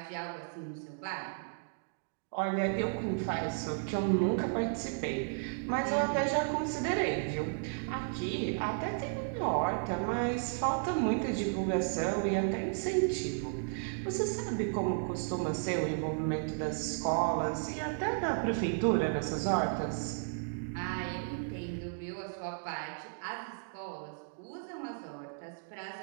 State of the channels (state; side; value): silent; left; digital silence